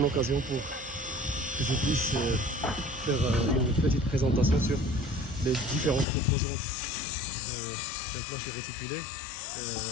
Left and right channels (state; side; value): drops out; right; at 6.1 s